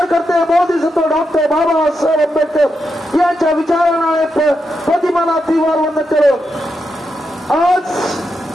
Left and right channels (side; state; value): both; normal; correlation 0.85